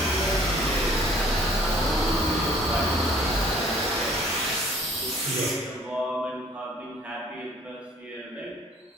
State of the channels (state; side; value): normal; both; correlation 0.55